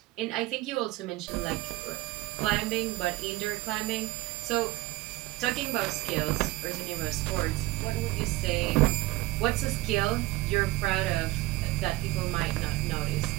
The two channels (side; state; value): left; quieter; 19.1 dB